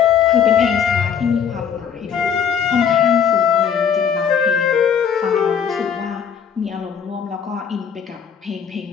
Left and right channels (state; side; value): quieter; right; 7.5 dB